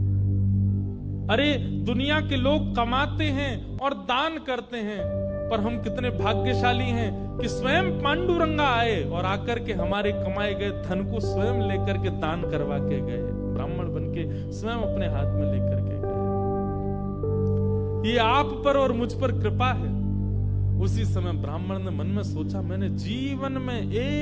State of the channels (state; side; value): identical; both; correlation 1.00